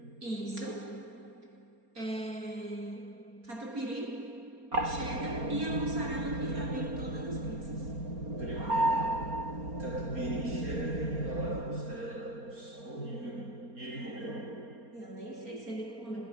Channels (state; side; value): late; left; 4.3 ms